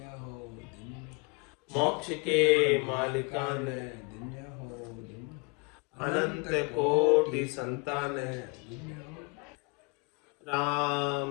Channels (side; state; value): right; quieter; 30.4 dB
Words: मोक्ष के मालिका ने, अनंत कोटि संतान है।